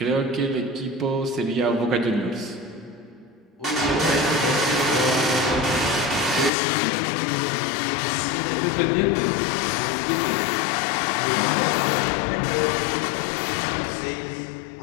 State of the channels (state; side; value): drops out; right; at 6.5 s